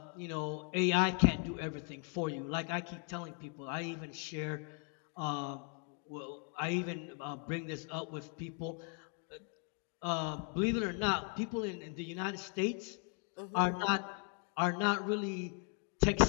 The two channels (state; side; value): quieter; right; 39.3 dB